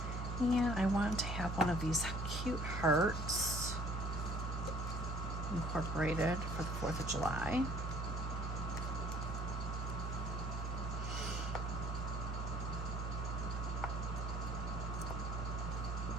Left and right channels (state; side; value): normal; both; correlation 0.56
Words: And I want to have one of these cute hearts incorporated for the 4th of July.